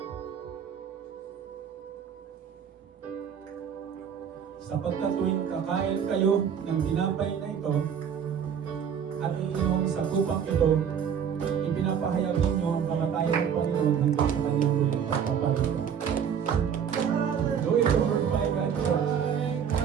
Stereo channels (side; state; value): left; quieter; 7.9 dB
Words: Sapagkat tuwing kakain kayo ng tinapay na ito at iinom sa kupang ito, ipinapahayag ninyo ang kamatayan ng Panginoon hanggang sa kanyang muling pagpapalit. Go into glorify God, church.